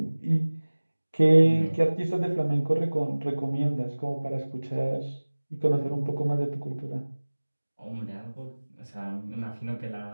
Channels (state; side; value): inverted; both; correlation -1.00